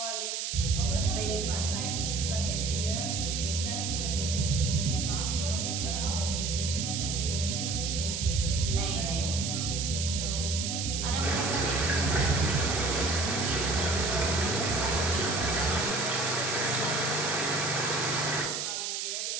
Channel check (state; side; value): noise; right; hiss, 2 dB below the sound